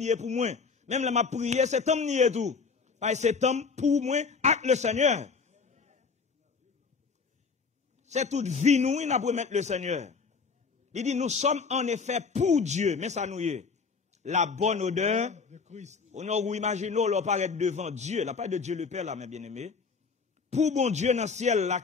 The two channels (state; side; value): quieter; right; 5.1 dB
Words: pour moi. Même là m'a prié c'est temps nié tout. Parce que c'est temps pour moi avec le Seigneur. C'est toute vie nous n'a pour mettre le Seigneur. Il dit nous sommes en effet pour Dieu, mais ça nous y est. La bonne odeur de Christ. On a imaginé on paraître devant Dieu, la part de Dieu le Père là mes bien-aimés. Pour bon Dieu dans le ciel là